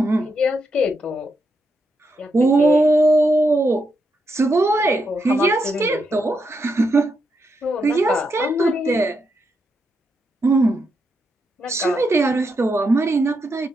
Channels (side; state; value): both; normal; correlation 0.82